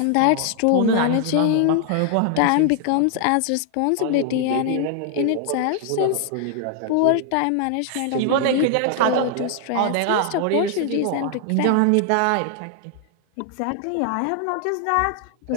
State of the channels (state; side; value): different; both; correlation 0.00